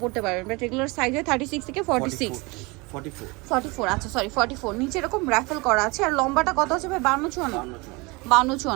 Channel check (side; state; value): left; quieter; 25.9 dB